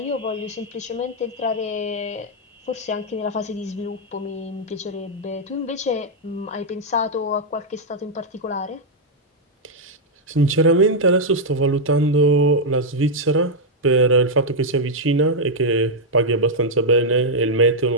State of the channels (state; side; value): normal; both; correlation -0.03